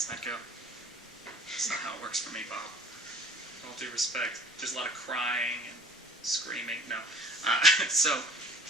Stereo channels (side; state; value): both; normal; correlation 0.48